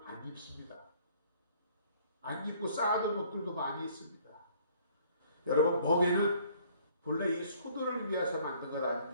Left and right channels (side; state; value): both; inverted; correlation -0.58